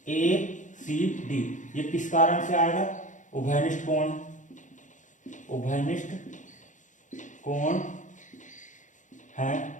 ACD ये किस कारण से आएगा, उभयनिष्ठ कोण, उभयनिष्ठ कोण है,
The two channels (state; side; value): late; right; 0.36 ms